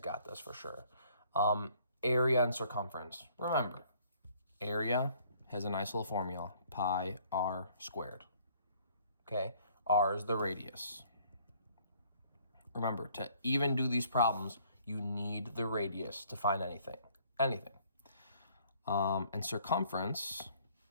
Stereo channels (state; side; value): inverted; both; correlation -0.60